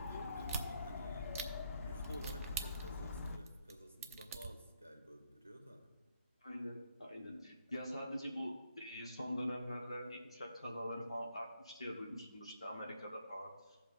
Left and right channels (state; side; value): inverted; both; correlation -0.74